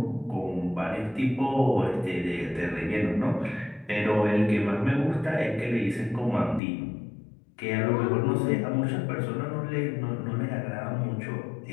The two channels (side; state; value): right; drops out; at 6.6 s